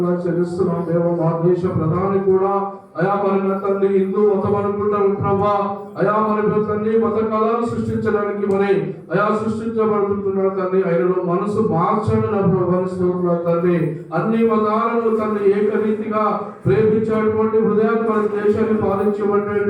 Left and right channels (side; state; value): both; identical; correlation 1.00